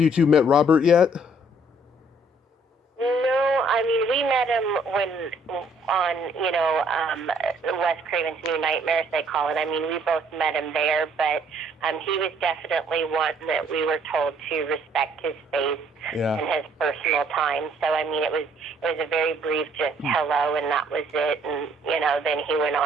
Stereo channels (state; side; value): normal; both; correlation 0.63